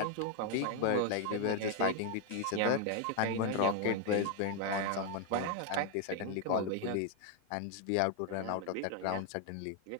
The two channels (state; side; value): different; both; correlation 0.00